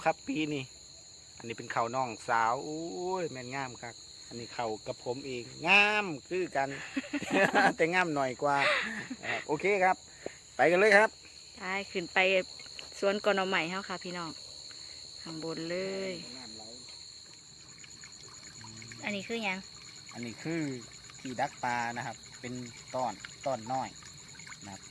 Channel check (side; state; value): both; identical; correlation 1.00